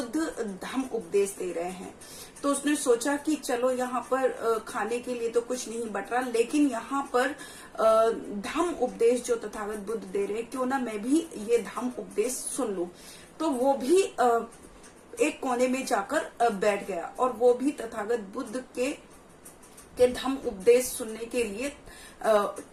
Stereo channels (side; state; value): both; identical; correlation 1.00